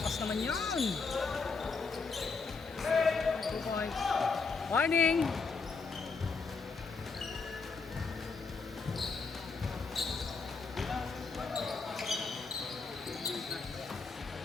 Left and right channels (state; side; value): quieter; right; 4.6 dB